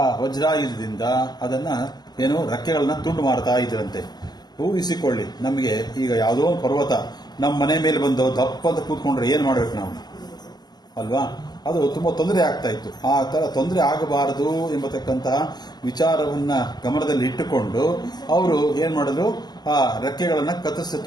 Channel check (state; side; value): late; right; 0.20 ms